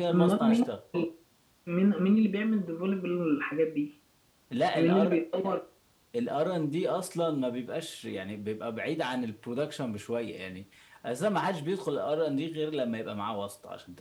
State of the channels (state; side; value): identical; both; correlation 1.00